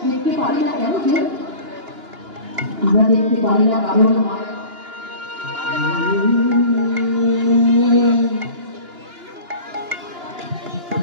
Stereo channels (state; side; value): late; left; 2.9 ms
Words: দেখতে পারি না কেন কেউ, আমরা দেখতে পারি না কারণ মায়া।